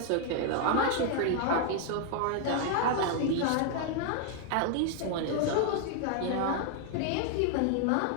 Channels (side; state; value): both; different; correlation 0.00